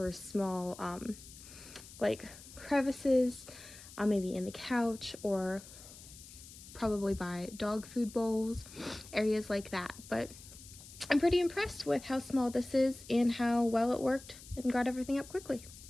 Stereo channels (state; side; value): noise; left; hiss, 17 dB below the sound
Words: small, like crevices, maybe in the couch, or probably by dog food bowls, areas like that. But I'm pretty impressed with how small this is and how well it worked and got everything up quickly.